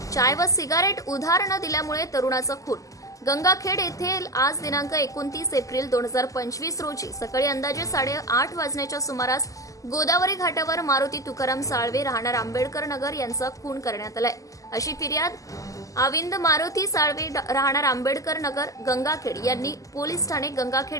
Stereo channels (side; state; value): right; late; 0.16 ms